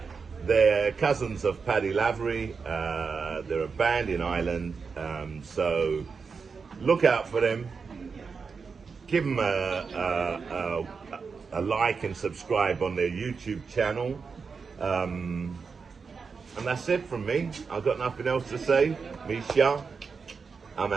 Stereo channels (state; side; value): quieter; left; 5.3 dB